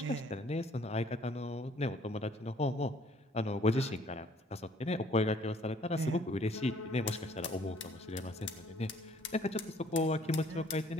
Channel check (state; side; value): normal; both; correlation 0.59